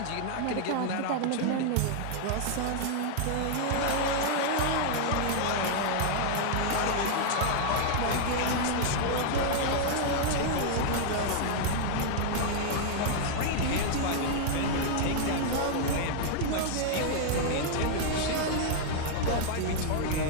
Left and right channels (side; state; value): both; different; correlation -0.01